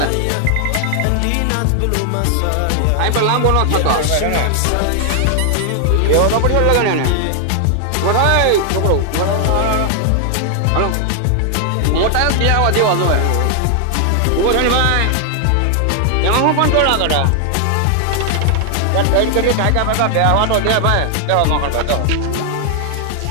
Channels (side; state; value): both; different; correlation 0.00